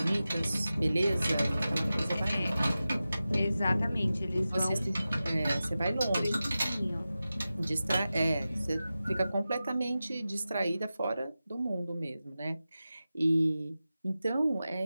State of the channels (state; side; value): inverted; both; correlation -0.94